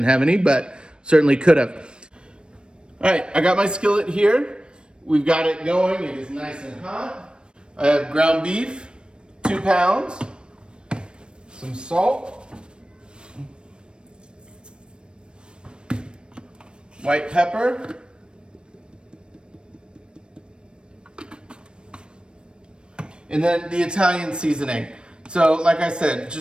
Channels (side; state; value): left; late; 0.054 ms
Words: have any, but certainly could have. All right, I got my skillet here. We've got it going. It is nice and hot. I have ground beef, 2 pounds, some salt, white pepper, and then the Italian seasoning. So like I said,